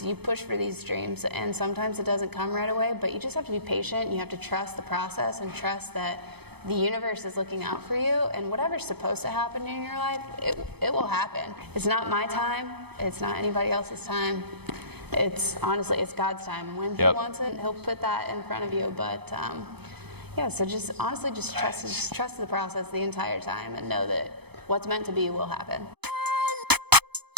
you push for these dreams, and sometimes it doesn't come right away, but you just have to be patient. You have to trust the process and trust that the universe is looking out for you, and whatever's supposed to happen in your life, it will happen. It's not my time. It's not anybody else's time. It's honestly, it's God's time. When He wants it, He'll put that in front of you. But yeah, so just honestly, just trust the process the entire time, and know that what's meant to be will happen.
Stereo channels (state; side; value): late; left; 0.98 ms